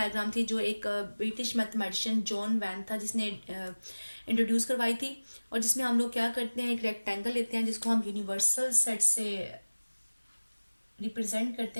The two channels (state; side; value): inverted; both; correlation -1.00